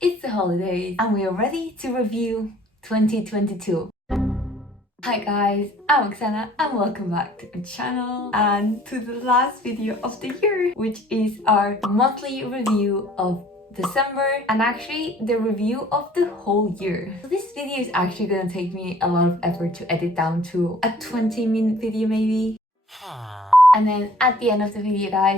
the holidays and we are ready to review 2022. Hi guys, I'm Oksana and welcome back to my channel and to the last video of the year, which is our monthly review of December and actually the review of the whole year. So this video is actually gonna take me a lot of effort to edit down to a 20-minute video maybe. And then at the end of the video,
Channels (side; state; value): both; normal; correlation 0.54